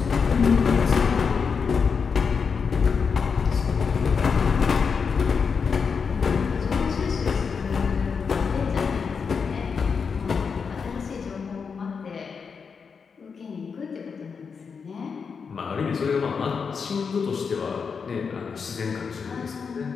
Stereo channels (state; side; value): quieter; right; 5.8 dB